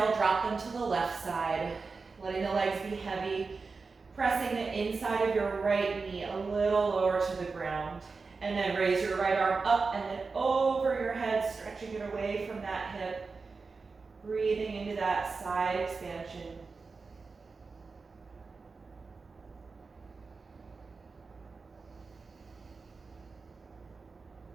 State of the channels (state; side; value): quieter; left; 4.4 dB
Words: drop them to the left side, letting the legs be heavy, pressing the inside of your right knee a little lower to the ground. And then raise your right arm up and then over your head, stretching it away from that hip, breathing into that side expansion.